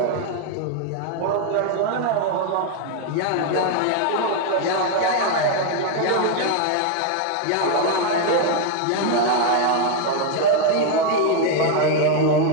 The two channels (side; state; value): both; different; correlation 0.01